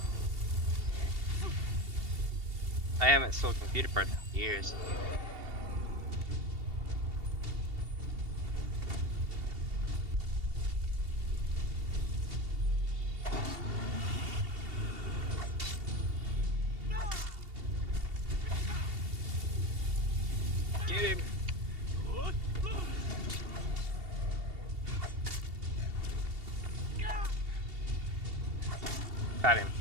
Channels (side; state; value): left; late; 2.7 ms